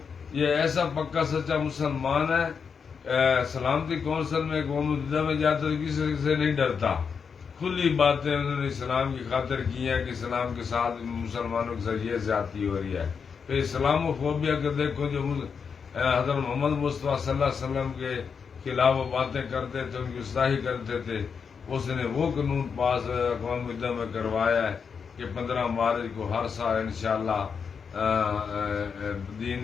یہ ایسا پکا سچا مسلمان ہے، سلامتی کونسل میں قوم متحدہ میں جاتا تو کسی سے نہیں ڈرتا، کھلی باتیں انہوں نے اسلام کی خاطر کی ہیں کہ اسلام کے ساتھ مسلمانوں کے ساتھ یہ زیادتی ہو رہی ہے۔ پھر اسلام و فوبیا کے دیکھو جو حضرت محمد مصطفیٰ صلی اللہ علیہ وسلم کے خلاف وہ باتیں کرتے تھے، ان کی گستاخی کرتے تھے، اس نے وہ قانون پاس اقوام متحدہ میں کروایا ہے کہ 15 مارچ کو ہر سال انشاءاللہ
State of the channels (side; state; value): right; quieter; 6.2 dB